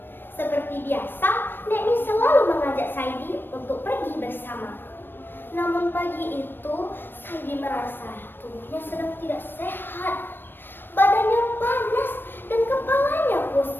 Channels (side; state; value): right; late; 0.096 ms